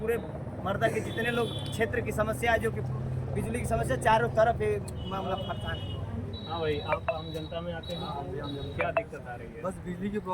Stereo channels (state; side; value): identical; both; correlation 1.00